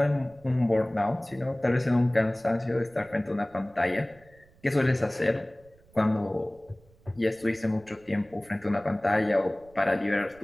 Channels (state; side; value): noise; right; rumble, 28 dB below the sound